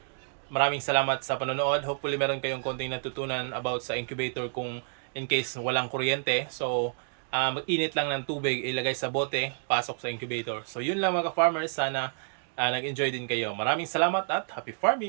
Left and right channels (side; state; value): left; silent; digital silence